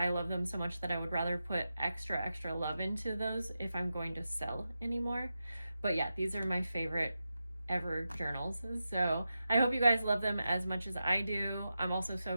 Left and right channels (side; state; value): both; inverted; correlation -0.90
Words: love them so much that I would rather put extra love into those if I'm going to sell anymore. But yeah, these are my favorite ever journals. So I hope you guys love them as much as I do. I'm also so